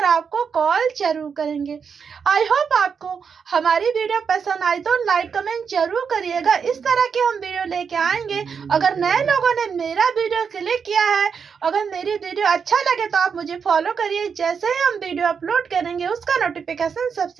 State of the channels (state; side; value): quieter; left; 6.3 dB